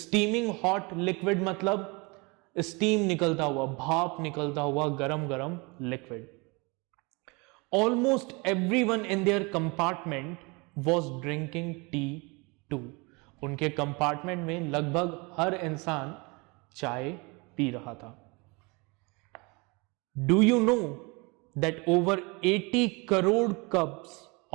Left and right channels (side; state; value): left; quieter; 27.9 dB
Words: हॉट लिक्विड मतलब स्टीम निकलता हुआ, भाप निकलता हुआ गरम गरम liquid. Almost everyone in their compartment was drinking tea too. उनके कंपार्टमेंट में लगभग हर इंसान चाय पी रहा था. Do you know that over 80 crore cups